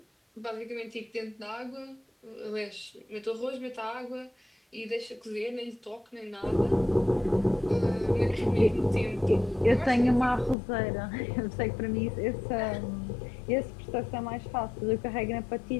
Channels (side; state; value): right; drops out; at 10.6 s